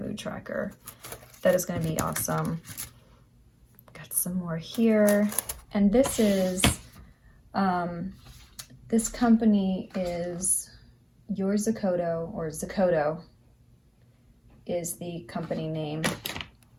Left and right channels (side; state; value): both; identical; correlation 1.00